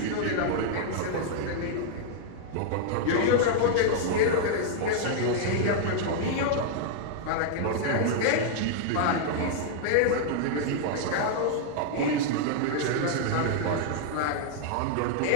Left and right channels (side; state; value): both; different; correlation -0.01